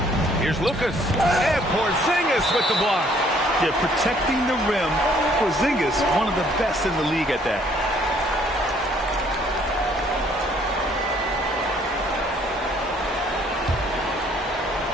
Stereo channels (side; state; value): both; normal; correlation 0.62